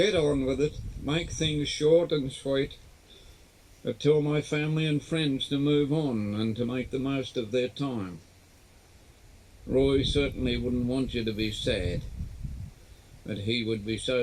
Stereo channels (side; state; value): both; identical; correlation 1.00